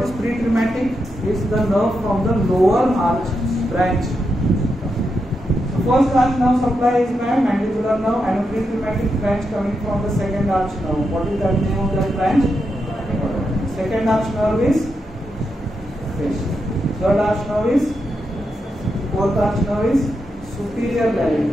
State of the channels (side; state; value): both; normal; correlation 0.85